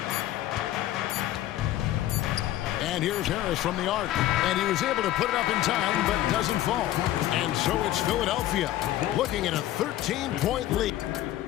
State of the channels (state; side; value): quieter; right; 14.0 dB